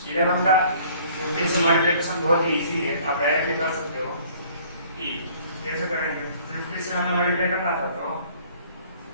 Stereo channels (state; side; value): inverted; both; correlation -0.55